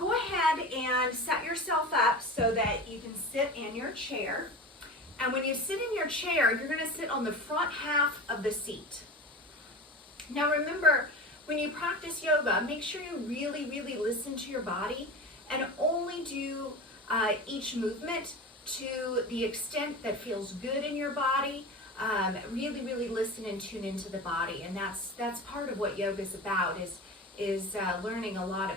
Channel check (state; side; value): normal; both; correlation 0.30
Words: ahead and set yourself up so that you can sit in your chair. And when you sit in your chair, you're going to sit on the front half of the seat. Now remember, when you practice yoga, make sure you really, really listen to your body and only do each movement to the extent that feels good in your body. Really, really listen and tune into the body. And that's part of what yoga is about, is learning a lot